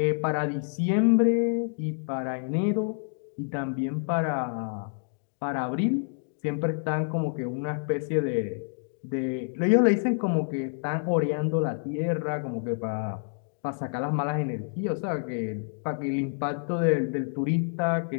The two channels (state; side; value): silent; right; digital silence